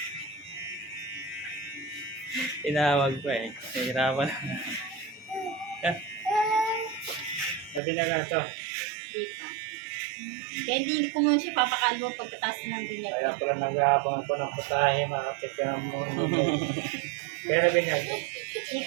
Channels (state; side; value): drops out; left; at 7.8 s